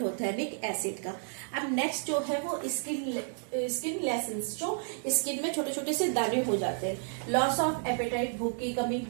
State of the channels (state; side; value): silent; left; 57 dB below the other